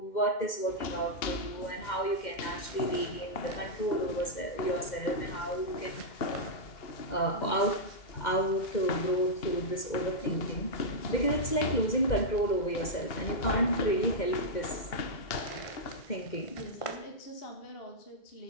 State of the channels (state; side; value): late; right; 2.1 ms